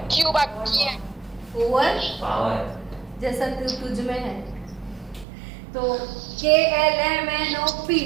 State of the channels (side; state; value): left; drops out; at 5.2 s